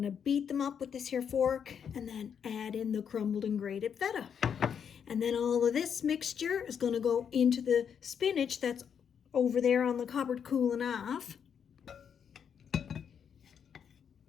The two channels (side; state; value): right; quieter; 7.6 dB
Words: beat them up with this here fork and then add in the crumbled and grated feta. And then all of this mixture is gonna go into the spinach that's over there on the cupboard cooling off.